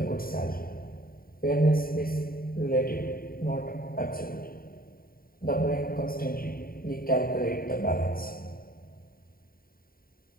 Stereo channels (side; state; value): right; late; 0.43 ms